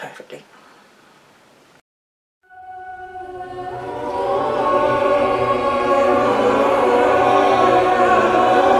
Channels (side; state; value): both; identical; correlation 1.00